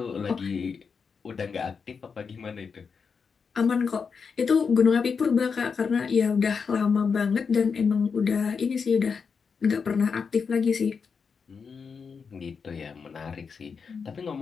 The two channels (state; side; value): quieter; right; 5.7 dB